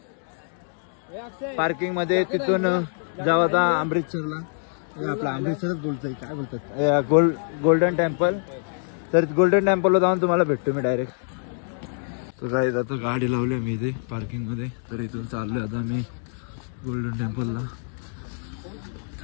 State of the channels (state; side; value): silent; right; digital silence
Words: पार्किंग मध्ये, तिथून जाऊ आता अमृतसरला. आपला अमृतसरच बोलतोय, काय बोलतात, गोल्डन टेम्पल. तर गोल्डन टेम्पलला जाऊन तुम्हाला भेटतो मी डायरेक्ट. तर जायचं आता गाडी लावली मी इथे पार्किंगमध्ये, तर इथून चाललोय आता मी गोल्डन टेम्पलला.